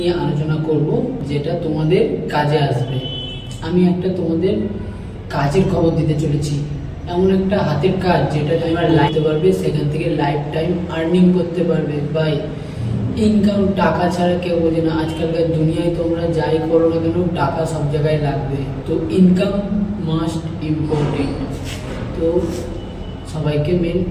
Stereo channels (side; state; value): both; identical; correlation 1.00